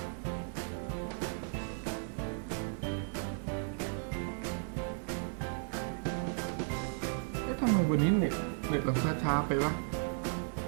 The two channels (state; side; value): silent; left; 54 dB below the other